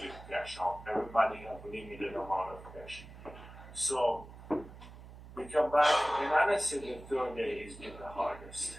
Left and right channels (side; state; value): right; noise; hum, 16 dB below the sound